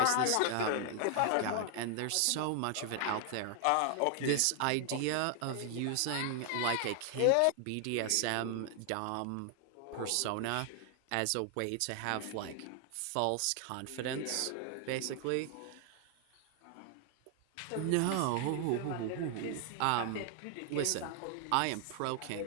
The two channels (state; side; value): different; both; correlation 0.00